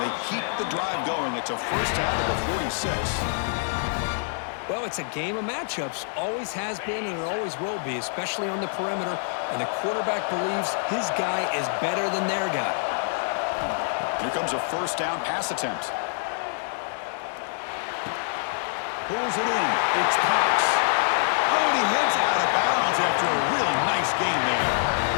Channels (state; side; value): silent; right; digital silence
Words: keep the drive going. It's a first out of the 46. Well, it's a game of matchups. Always has been and it always will be, especially on the perimeter. And the quarterback believes his guy is better than their guy. Here comes a first down pass attempt. Pulls it in. It's Cox. Oh, and he heads out of bounds after a really nice game there.